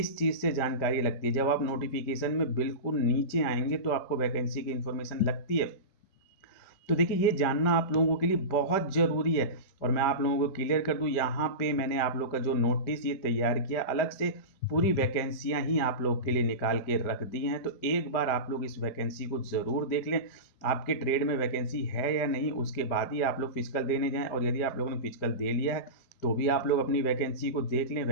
चीज़ से जानकारी लगती है। जब आप नोटिफिकेशन में बिल्कुल नीचे आएंगे तो आपको वैकेंसी की इन्फॉर्मेशन लगती है। तो देखिए ये जानना आप लोगों के लिए बहुत ज़रूरी है। और मैं आप लोगों को क्लियर कर दूं, यहाँ पे मैंने आप लोग का जो नोटिस ये तैयार किया, अलग से पूरी वैकेंसियाँ ही आप लोग के लिए निकाल के रख दी हैं। तो एक बार आप लोग इस वैकेंसी को ज़रूर देख लें। आपके ट्रेड में वैकेंसी है या नहीं, उसके बाद ही आप लोग फिजिकल देने जाएँ। और यदि आप लोगों ने फिजिकल दे लिया है तो भी आप लोग अपनी वैकेंसी को देख लें।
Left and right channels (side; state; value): right; late; 5.1 ms